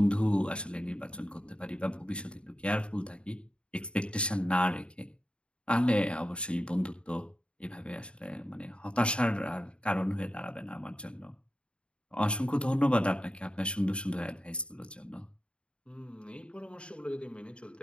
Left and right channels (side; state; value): right; late; 0.056 ms